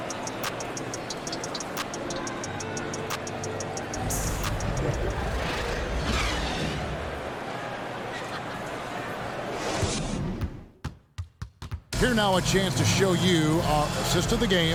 Here now a chance to show you our assist of the game,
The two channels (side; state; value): both; identical; correlation 1.00